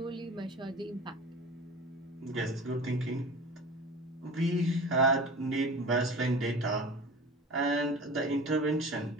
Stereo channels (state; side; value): normal; both; correlation 0.36